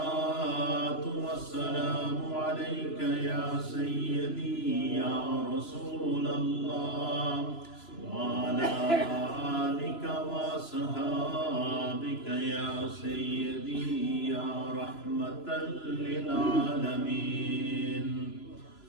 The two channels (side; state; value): right; late; 3.0 ms